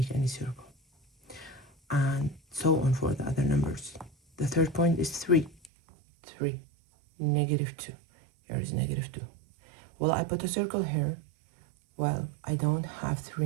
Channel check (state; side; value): drops out; left; at 5.7 s